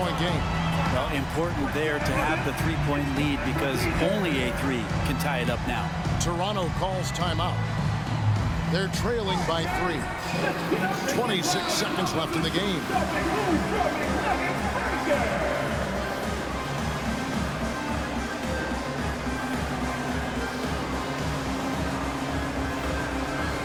game. Well, important there to have the 3-point lead because only a 3 can tie it up now. Toronto calls timeout. They're trailing by 3. 26 seconds left in the game.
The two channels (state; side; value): identical; both; correlation 1.00